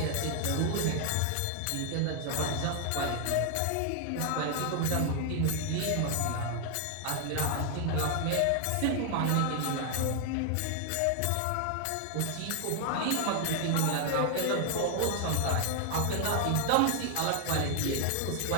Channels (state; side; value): different; both; correlation 0.00